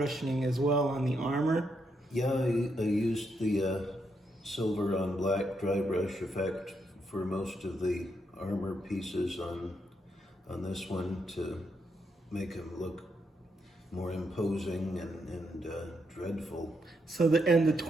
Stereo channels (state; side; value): normal; both; correlation 0.79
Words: as well on the armor. Yeah, I used the silver on black dry brush effect for most of the armor pieces on this one to make him look more imposing and dreadful. So the